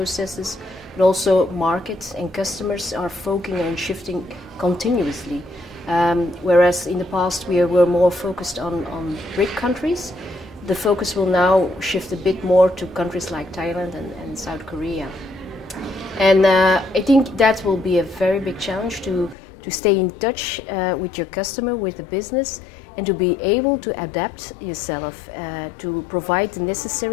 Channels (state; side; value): drops out; right; at 19.4 s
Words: but also markets and customers are focusing on shifting continuously. Whereas in the past we were more focused on BRIC countries, the focus will now shift a bit more to countries like Thailand and South Korea. And I think that will be a very big challenge to stay in touch with your customer, with the business, and to be able to adapt yourself to provide the